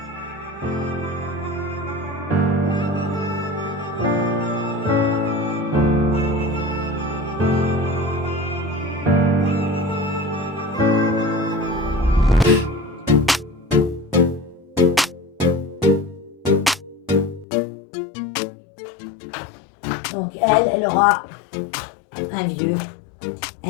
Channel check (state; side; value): drops out; right; at 17.4 s